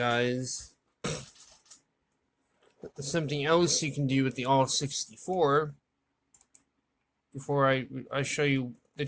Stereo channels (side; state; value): both; identical; correlation 1.00